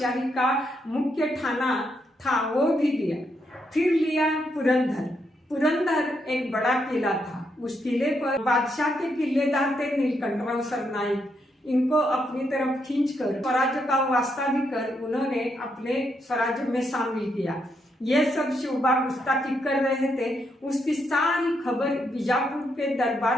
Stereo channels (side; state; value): both; normal; correlation 0.79